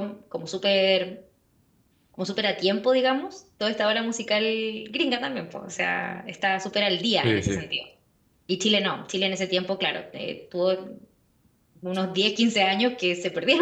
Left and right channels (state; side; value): identical; both; correlation 1.00